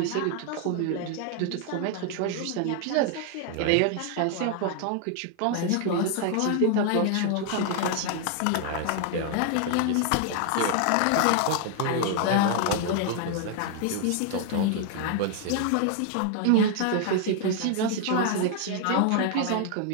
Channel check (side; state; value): both; different; correlation 0.00